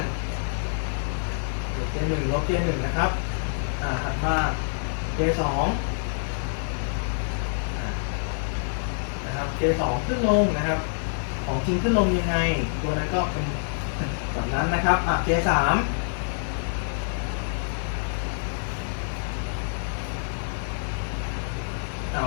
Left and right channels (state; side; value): silent; right; digital silence